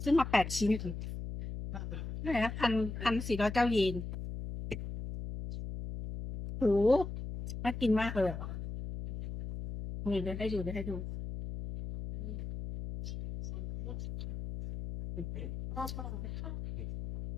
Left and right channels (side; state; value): left; noise; hum, 7 dB below the sound